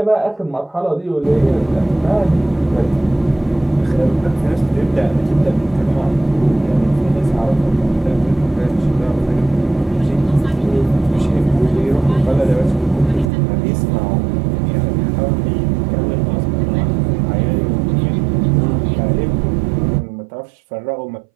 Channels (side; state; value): left; drops out; at 13.3 s